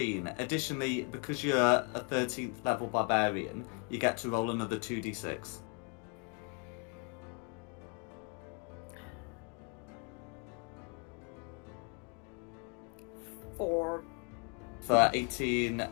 Additionally, because you're a 13th level barbarian, you get to roll another 2d6. Four. For 18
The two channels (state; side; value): quieter; right; 33.7 dB